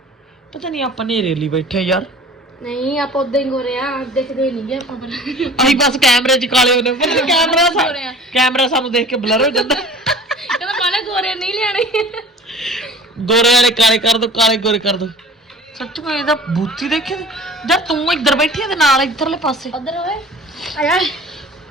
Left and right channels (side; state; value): both; normal; correlation 0.43